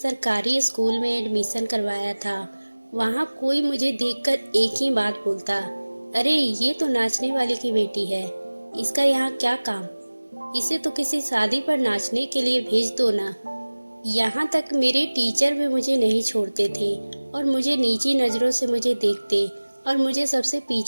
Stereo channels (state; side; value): inverted; both; correlation -1.00